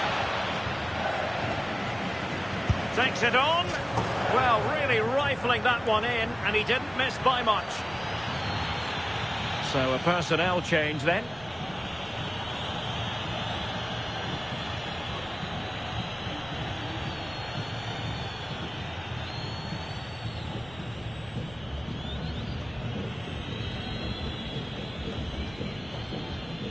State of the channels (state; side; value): noise; right; rumble, 20 dB below the sound